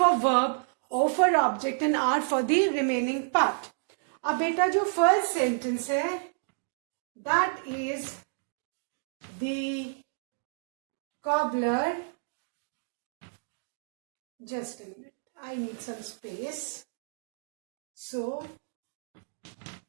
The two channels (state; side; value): silent; left; digital silence